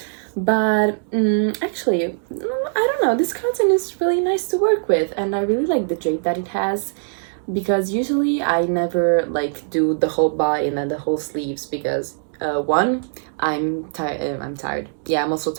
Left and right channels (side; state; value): left; silent; digital silence